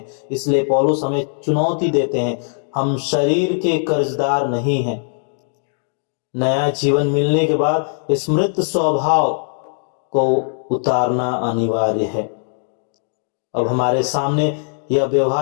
इसलिए पौलुस हमें चुनौती देते हैं, हम शरीर के कर्जदार नहीं हैं। नया जीवन मिलने के बाद इस मृत स्वभाव को उतारना अनिवार्य है। अब हमारे सामने यह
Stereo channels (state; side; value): silent; right; digital silence